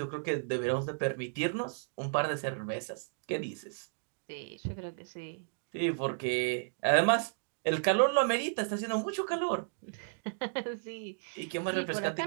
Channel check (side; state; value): left; silent; digital silence